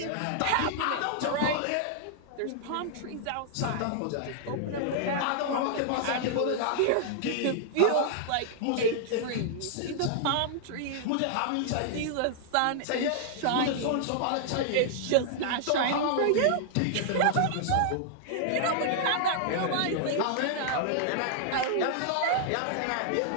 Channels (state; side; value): different; both; correlation -0.01